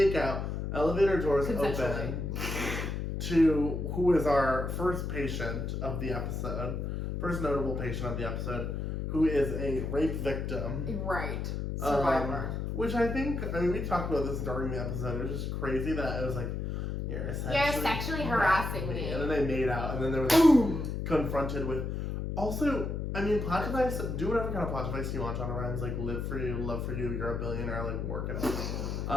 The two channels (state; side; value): noise; left; hum, 3 dB below the sound